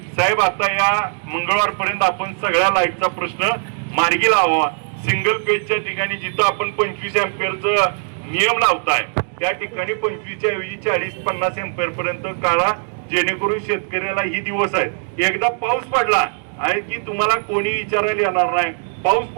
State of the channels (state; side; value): silent; left; 58 dB below the other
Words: साहेब आता या मंगळवारपर्यंत आपण सगळ्या लाईटचा प्रश्न मार्गी लावा. सिंगल पेजच्या ठिकाणी जिथं आपण 25 अँपिअरचा नियम लावताय त्या ठिकाणी 25च्या ऐवजी 40-50 अँपिअर पर्यंत काढा, जेणेकरून शेतकऱ्याला ही दिवस आहेत. एकदा पाऊस पडला आहे की तुम्हाला कोणी विचारायला येणार नाही. पाऊस